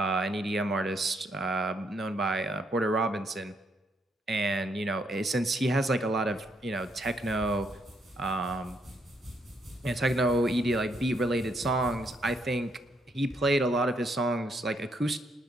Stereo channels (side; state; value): both; normal; correlation 0.74